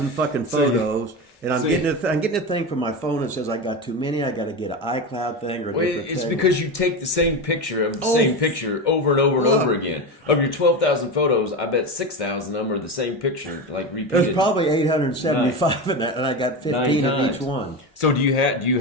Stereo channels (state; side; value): normal; both; correlation 0.20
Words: fucking photos. And I'm getting a thing from my phone that says I got too many. I got to get an iCloud thing or different it's thing. because you take the same picture of the same picture over and over and over again. Of your 12,000 photos, I bet 6,000 of them are the same picture, like repeated. There's probably 875 in that, and I got 15 of each one. So do you